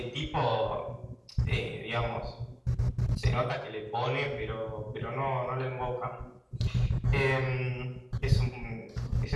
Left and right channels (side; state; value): both; identical; correlation 1.00